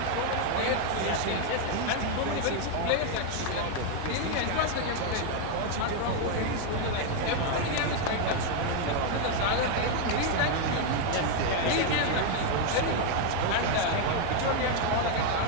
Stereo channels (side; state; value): both; different; correlation 0.00